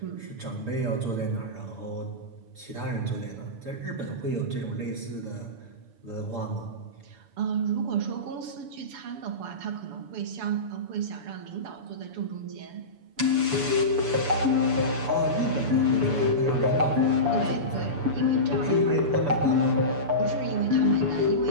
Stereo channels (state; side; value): late; left; 7.0 ms